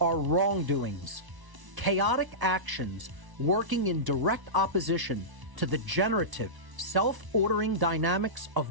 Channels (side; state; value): left; late; 1.0 ms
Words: wrongdoings, chaotic actions working in direct opposition to the generative, self-ordering dynamics of